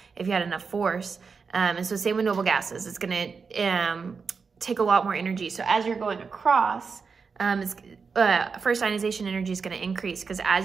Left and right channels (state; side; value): quieter; left; 5.3 dB